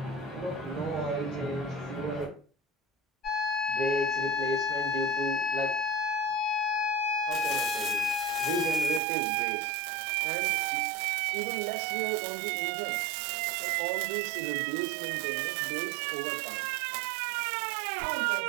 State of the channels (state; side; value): drops out; left; at 9.0 s